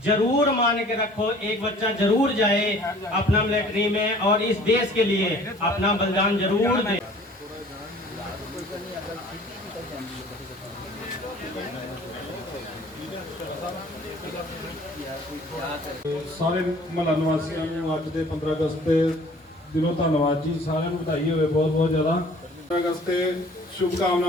जरूर मान के रखो, एक बच्चा जरूर जाए अपना मिलिट्री में और इस देश के लिए अपना बलिदान जरूर दे। ਸਾਰੇ ਮਹੱਲਾ ਨਿਵਾਸੀਆਂ ਨੂੰ ਅੱਜ ਦੇ 15 ਅਗਸਤ ਦੇ ਦਿਨੋਂ ਧੰਨਵਾਦ ਜੀ, ਸਾਰਿਆਂ ਨੂੰ ਵਧਾਈ ਹੋਵੇ ਬਹੁਤ ਬਹੁਤ ਜ਼ਿਆਦਾ। 15 ਅਗਸਤ ਤੇ ਸ਼ੁਭ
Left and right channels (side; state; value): both; normal; correlation 0.51